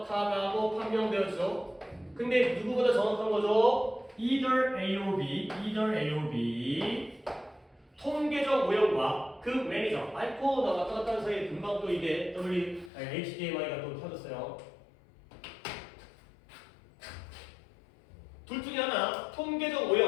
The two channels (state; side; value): drops out; right; at 12.9 s